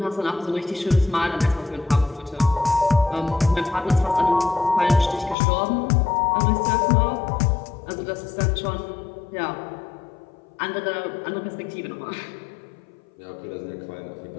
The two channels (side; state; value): right; drops out; at 5.4 s